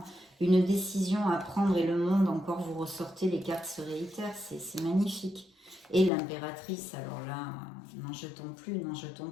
une décision à prendre et le monde, encore vous ressortez, les cartes se réitèrent, c'est magnifique. Et l'impératrice, alors là, n'en jetons plus,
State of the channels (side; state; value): right; drops out; at 6.1 s